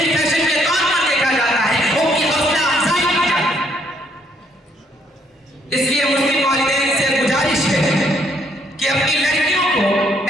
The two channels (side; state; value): both; normal; correlation 0.69